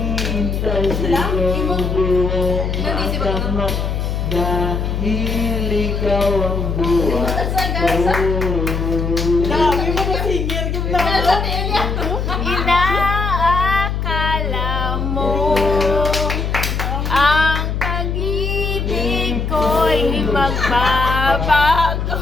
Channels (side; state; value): left; noise; hum, 1 dB below the sound